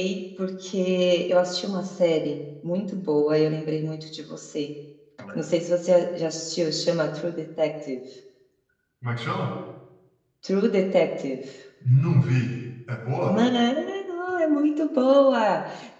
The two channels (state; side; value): identical; both; correlation 1.00